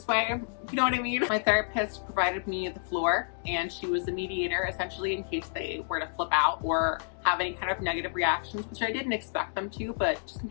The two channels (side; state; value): right; silent; digital silence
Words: way, you know what I mean? My therapist provided me the floor, and she was the mediator essentially in case they were to flip out or have any kind of negative reactions, which I didn't expect them to, but just in